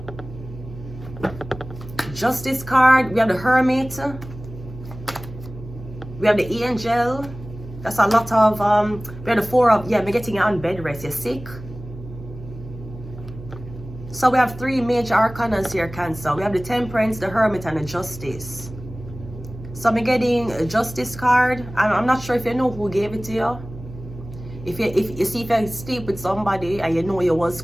Justice card. We have the Hermit. We have the Angel. That's a lot of we have the Four of, yeah, we're getting you on bed rest. You're sick. So we have three major arcanas here, Cancer. We have the Temperance, the Hermit, and the Justice. So I'm getting a Justice card. I'm not sure if you know who gave it to you. If you sleep with somebody and you know you was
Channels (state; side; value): noise; right; hum, 14 dB below the sound